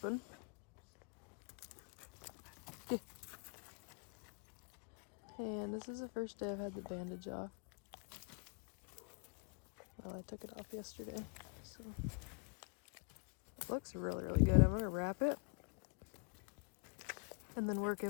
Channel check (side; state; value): right; quieter; 34.7 dB